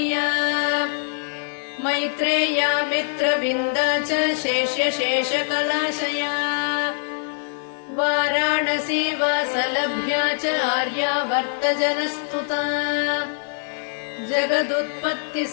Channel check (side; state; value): right; silent; 62 dB below the other